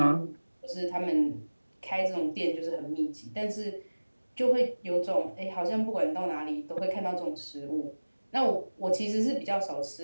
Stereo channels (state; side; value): inverted; both; correlation -1.00